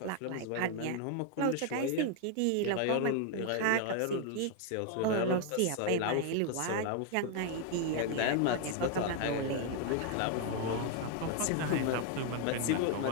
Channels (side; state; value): both; different; correlation 0.00